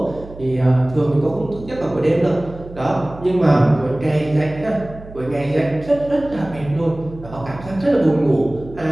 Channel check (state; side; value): noise; right; hum, 16 dB below the sound